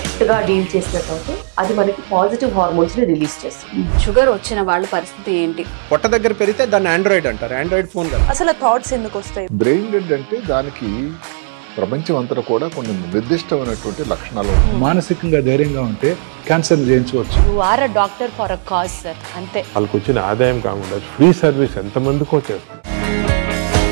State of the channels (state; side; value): silent; left; digital silence